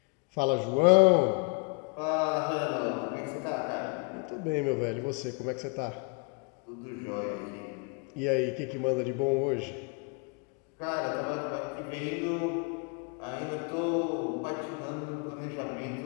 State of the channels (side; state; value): right; quieter; 32.3 dB